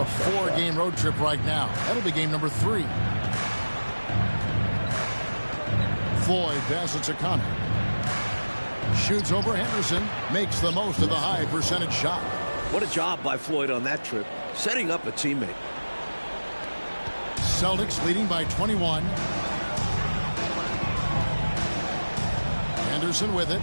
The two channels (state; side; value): inverted; both; correlation -1.00